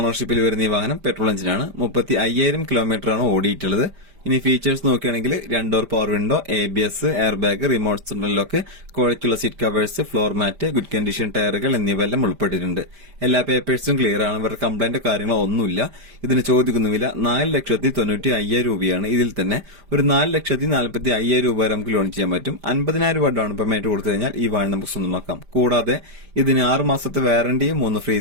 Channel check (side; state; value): left; late; 5.0 ms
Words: വരുന്ന ഈ വാഹനം പെട്രോൾ എഞ്ചിനാണ്. 35,000 കിലോമീറ്റർ ആണ് ഓടിയിട്ടുള്ളത്. ഇനി ഫീച്ചേഴ്സ് നോക്കുകയാണെങ്കിൽ 2 door power window, ABS, air bag, remote central lock, ക്വാളിറ്റിയുള്ള seat covers, floor mat, good condition ടയറുകൾ എന്നിവയെല്ലാം ഉൾപ്പെട്ടിട്ടുണ്ട്. എല്ലാ പേപ്പേഴ്സും ക്ലിയർ ആണ്. ഇവരുടെ കംപ്ലൈന്റ് കാര്യങ്ങളോ ഒന്നുമില്ല. ഇതിന് ചോദിക്കുന്ന വില 4,90,500 രൂപയാണ്. ഇതിൽ തന്നെ ഒരു 4,40,500 രൂപ വരെ നമുക്ക് ലോൺ ചെയ്യാൻ പറ്റും. 50,000 രൂപ ഡൗൺ പേയ്മെന്റ് കൊടുത്തു കഴിഞ്ഞാൽ ഈ വാഹനം നമുക്ക് സ്വന്തമാക്കാം. കൂടാതെ ഇതിന് 6 മാസത്തെ വാറന്റിയും 3 ഫ്രീ